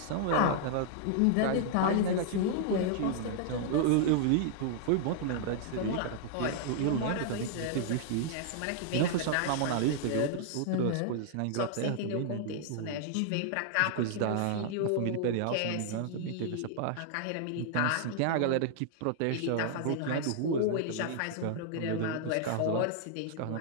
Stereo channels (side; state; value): both; different; correlation -0.01